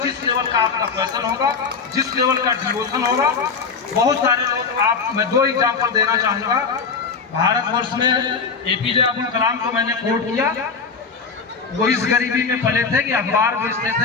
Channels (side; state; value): right; quieter; 5.2 dB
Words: जिस लेवल का आपका पैशन होगा, जिस लेवल का डिवोशन होगा। बहुत सारे लोग, मैं 2 एग्जाम्पल देना चाहूँगा। भारतवर्ष में एपीजे अब्दुल कलाम को मैंने कोट किया। वो इस गरीबी में पले थे कि अखबार बेचते